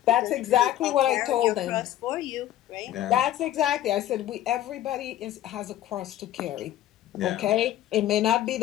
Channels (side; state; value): right; quieter; 13.0 dB